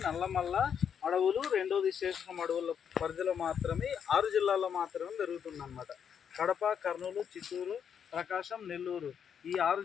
నల్లమల్ల అడవులు, రెండోది శేషం అడవుల పరిధిలో మాత్రమే 6 జిల్లాల్లో మాత్రమే పెరుగుతుందన్నమాట. కడప, కర్నూలు, చిత్తూరు, ప్రకాశం, నెల్లూరు ఈ 6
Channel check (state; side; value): quieter; right; 7.8 dB